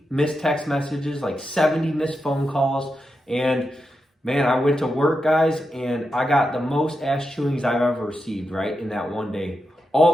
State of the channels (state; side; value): normal; both; correlation 0.87